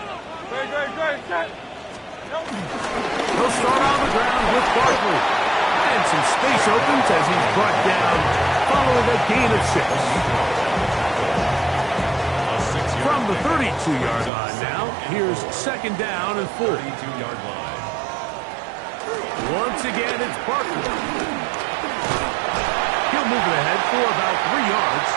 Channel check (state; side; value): drops out; left; at 14.3 s